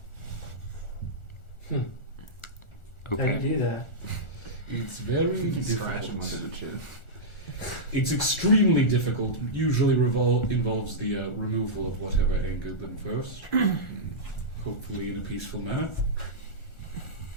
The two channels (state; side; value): late; right; 1.4 ms